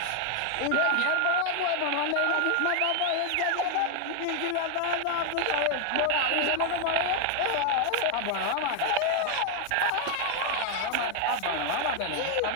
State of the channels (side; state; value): both; different; correlation 0.00